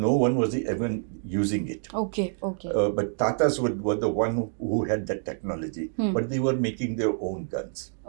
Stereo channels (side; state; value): left; silent; digital silence